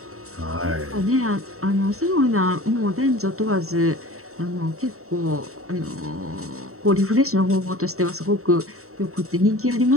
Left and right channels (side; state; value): left; late; 0.64 ms